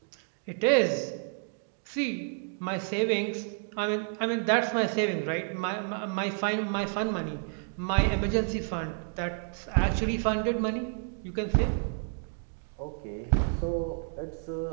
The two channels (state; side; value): silent; left; 58 dB below the other